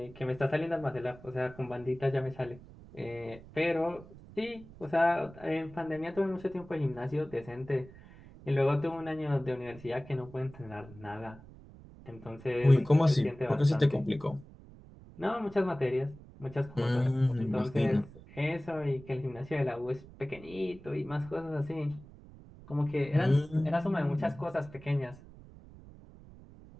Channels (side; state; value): right; noise; rumble, 19 dB below the sound